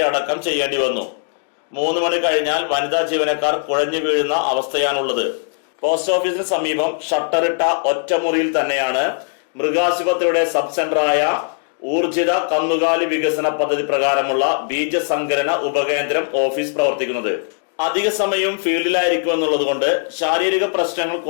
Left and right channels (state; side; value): silent; right; digital silence